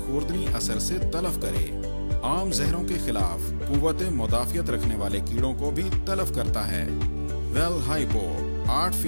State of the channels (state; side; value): inverted; both; correlation -1.00